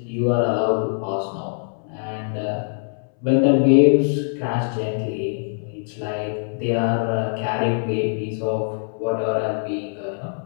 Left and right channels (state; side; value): silent; right; 62 dB below the other